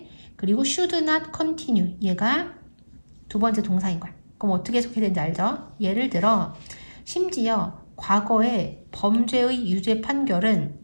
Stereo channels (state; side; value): inverted; both; correlation -1.00